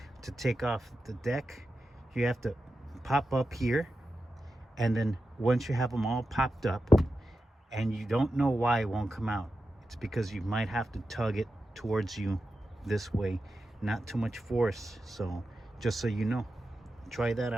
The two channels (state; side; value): normal; both; correlation 0.91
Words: to take off the deck, you have to pop up here, and then once you have them all popped up and you don't know why it won't come out, it's because you might have to tug it towards you this way, not too much force. So just so you know, try that